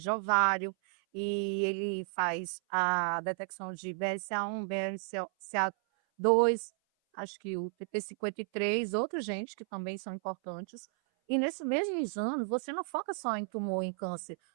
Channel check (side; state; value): left; silent; 56 dB below the other